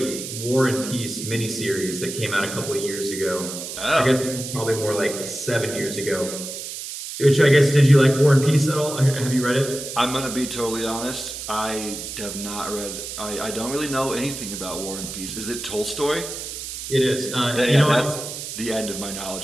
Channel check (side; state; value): right; noise; hiss, 8 dB below the sound